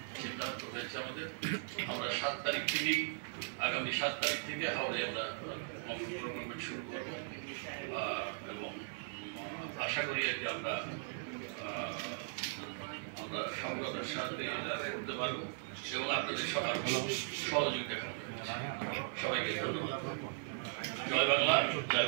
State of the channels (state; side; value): silent; left; 52 dB below the other